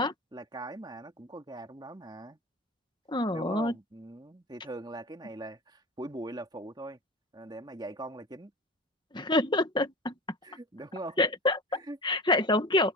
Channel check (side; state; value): both; normal; correlation 0.32